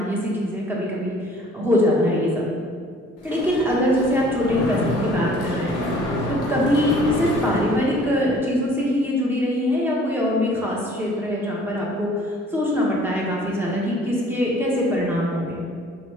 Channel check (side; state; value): both; normal; correlation 0.54